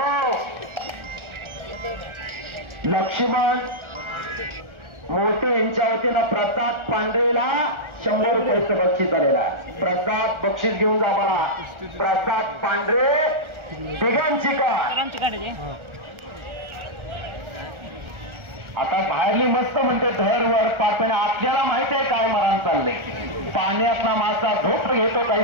लक्ष्मण मोठे यांच्या वतीनं प्रसाद पांढरेला 100 रुपयाचं बक्षीस झालेला आहे. प्रसाद बक्षीस घेऊन जा मला. प्रसाद पांढरे तिघांची का आता बाहेरली मस्त म्हणते धैर्यवर पापणे. आपल्याला माहित आहे काय मरण चाललंय. पाण्यातला मासा झोप घेतो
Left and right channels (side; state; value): left; late; 1.4 ms